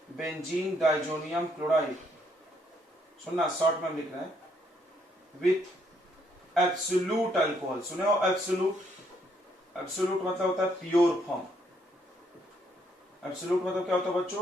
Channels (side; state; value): both; normal; correlation 0.71